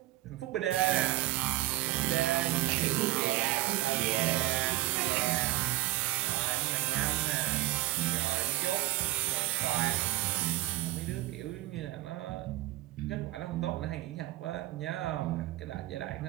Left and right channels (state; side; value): quieter; left; 17.1 dB